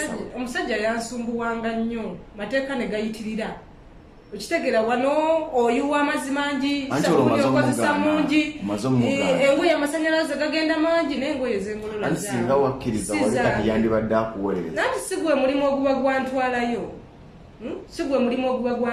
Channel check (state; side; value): identical; both; correlation 1.00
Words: omusajja yansumbuwanga nnyo mateeka ne gayitirira okitegeera wano oyuwa amazzi mangi sabuni okozesa mungi engoye amasanyalaze gagenda mangi n'engoye zengolola singa wakkiriza wali kati yandibadde akuwolereza nanti sigwe mulimu oguba